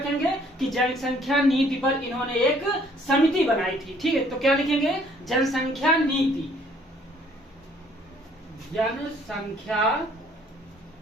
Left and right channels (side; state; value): both; normal; correlation 0.61